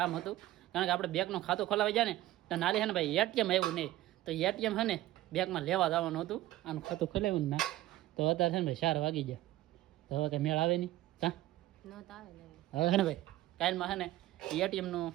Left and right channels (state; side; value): quieter; left; 15.6 dB